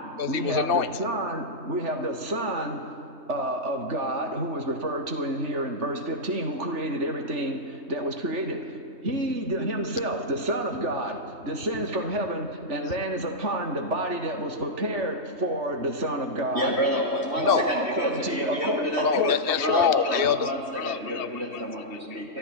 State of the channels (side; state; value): left; late; 3.2 ms